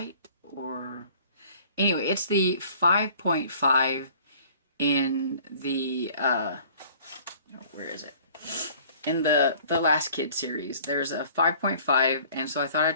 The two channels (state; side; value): inverted; both; correlation -0.52